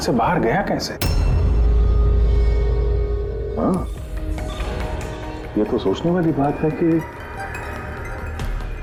बाहर गया कैसे? हाँ, ये तो सोचने वाली बात है कि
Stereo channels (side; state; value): both; identical; correlation 1.00